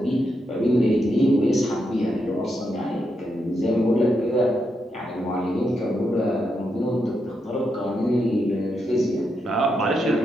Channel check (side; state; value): both; normal; correlation 0.83